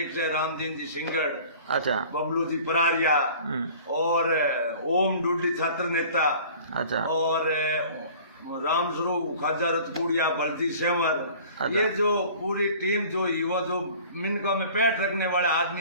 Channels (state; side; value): inverted; both; correlation -0.47